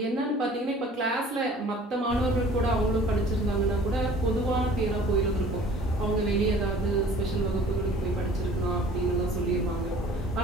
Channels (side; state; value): both; normal; correlation 0.49